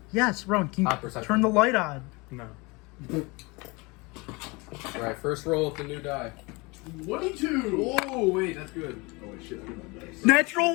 Yes, Rowan, can you Perception. turn the light on? No. Alright, first roll with the new die. 22! Oh, wait, that's good. Oh, wait, shit.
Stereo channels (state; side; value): quieter; right; 26.1 dB